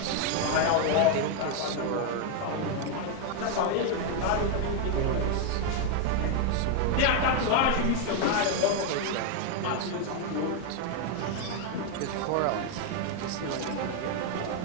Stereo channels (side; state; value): both; different; correlation 0.01